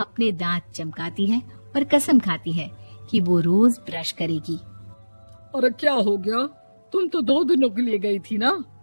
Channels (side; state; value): both; inverted; correlation -1.00